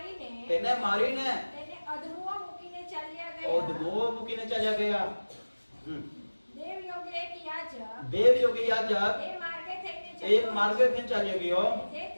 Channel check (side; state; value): both; inverted; correlation -1.00